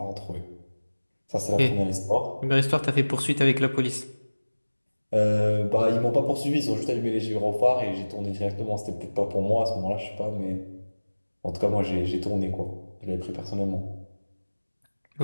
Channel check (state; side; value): inverted; both; correlation -1.00